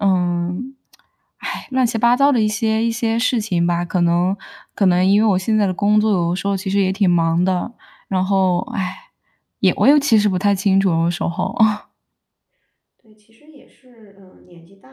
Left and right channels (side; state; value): both; identical; correlation 1.00